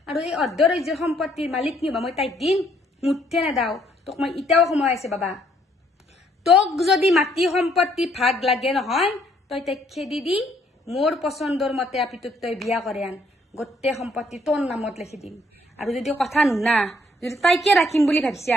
আৰু এই অৰ্ধ ৰাজ্যৰ সম্পত্তিৰ মালিক নিবা মই তাইক দিম মুঠে নেদাও তোক মই এতিয়াও সময় আছে বাবা তোক যদি মাটি সম্পত্তি ভাগ লাগে নহয় তই তাইক খেদি দি মোৰ পচন্দৰ মতে আপিটোক তই বিয়া কৰে আন গোটেই সম্পত্তি তোৰ নামত লিখি দিম আৰু যদি কথা নুনা যদি তাইকে ৰাখিম বুলি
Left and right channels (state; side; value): normal; both; correlation 0.67